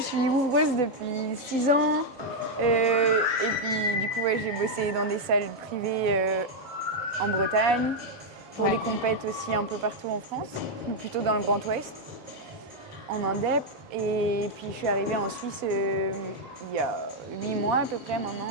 suis ouvreuse depuis 6 ans. Et puis du coup ouais, j'ai bossé dans des salles privées en Bretagne, pour des compètes aussi un peu partout en France, plutôt dans le Grand Ouest, en Indep. Et puis je suis arrivée en Suisse il y a 8 mois à peu près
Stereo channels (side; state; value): both; normal; correlation 0.00